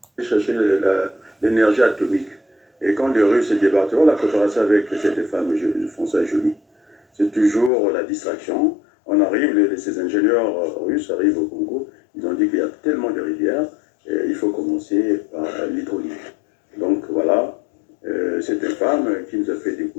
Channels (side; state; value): right; drops out; at 7.7 s